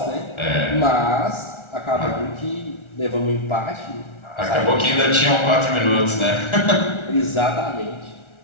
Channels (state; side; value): late; right; 1.3 ms